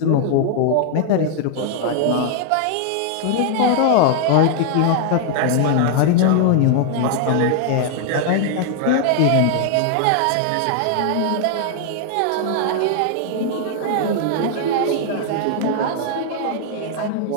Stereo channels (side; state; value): both; different; correlation 0.00